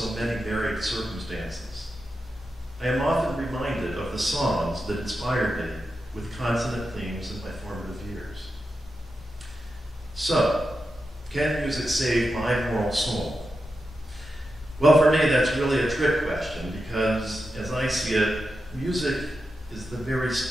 many varied circumstances, I am often reminded of the songs that inspired me with consonant themes in my formative years. So, can music save my moral soul? Well, for me, that's really a trick question because, as I see it, music is the very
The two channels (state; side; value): normal; both; correlation 0.89